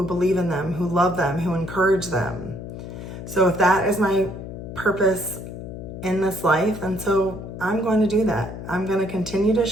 believe in them, who love them, who encourage them. So if that is my purpose in this life, then so I'm going to do that. I'm going to continue to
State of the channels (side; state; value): left; noise; hum, 10 dB below the sound